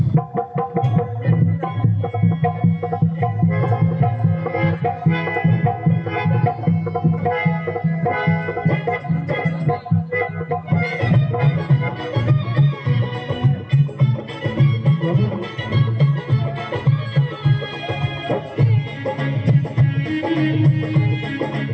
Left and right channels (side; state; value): both; identical; correlation 1.00